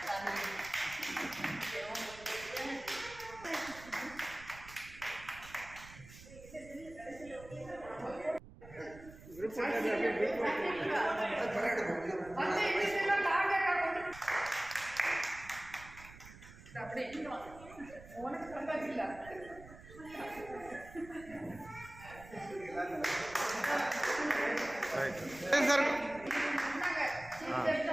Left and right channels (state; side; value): noise; right; rumble, 18 dB below the sound